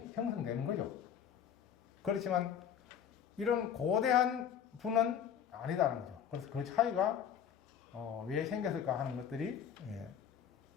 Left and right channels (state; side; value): quieter; right; 8.6 dB